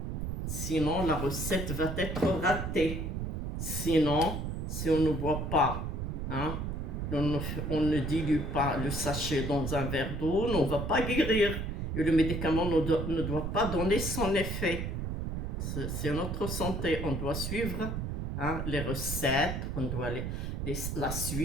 la recette va être ratée. Sinon, si on ne boit pas, on ne dilue pas le sachet dans un verre d'eau, on ne va pas guérir. Et le médicament ne doit pas donner son effet. C'est notre santé. On doit suivre les recettes, on doit la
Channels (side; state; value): right; noise; rumble, 3 dB below the sound